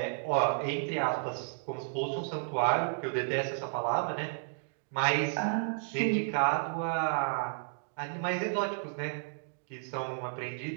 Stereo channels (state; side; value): silent; left; digital silence